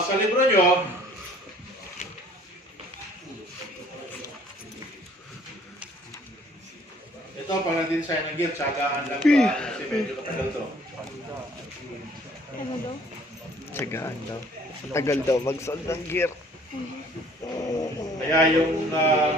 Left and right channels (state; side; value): normal; both; correlation 0.57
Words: sa libro nyo, ito, pag nag-design ng gear, tsagaan lang ba? Kasi medyo katagal to. Ano daw? Tsagaan daw. Tagal daw mag-solve ng gear. Kaya yung